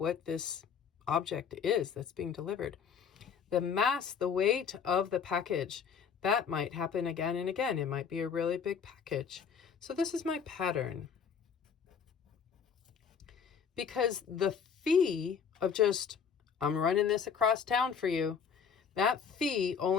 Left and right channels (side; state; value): right; quieter; 6.7 dB